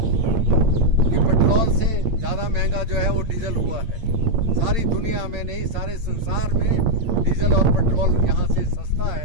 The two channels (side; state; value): left; late; 8.7 ms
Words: कि पेट्रोल से ज़्यादा महंगा जो है वो डीजल हुआ है। सारी दुनिया में नहीं, सारे संसार में डीजल और पेट्रोल यहाँ से सस्ता